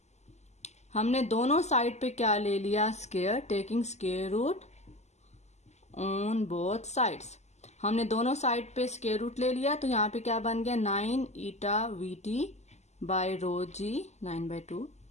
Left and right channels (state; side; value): late; right; 0.33 ms